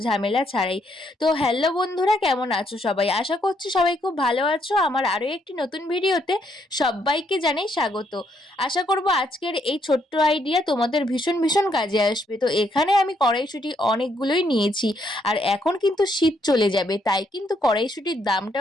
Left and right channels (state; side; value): normal; both; correlation 0.73